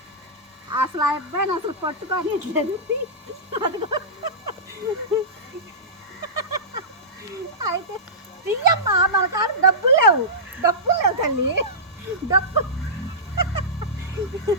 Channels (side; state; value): both; normal; correlation -0.17